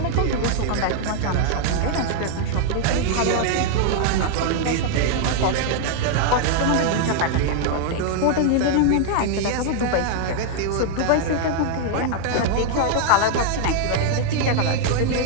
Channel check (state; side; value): different; both; correlation 0.00